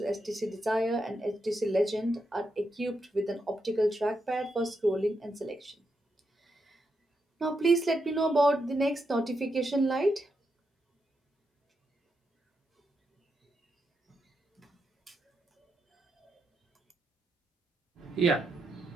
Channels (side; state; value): both; normal; correlation 0.83